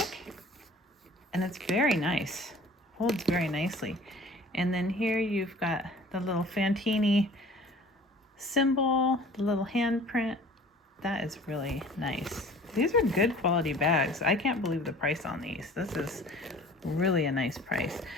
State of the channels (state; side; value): normal; both; correlation 0.48